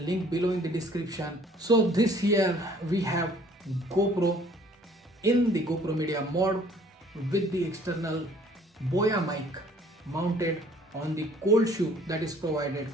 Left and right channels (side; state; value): both; normal; correlation 0.56